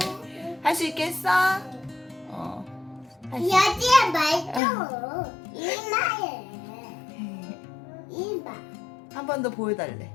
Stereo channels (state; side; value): drops out; right; at 4.6 s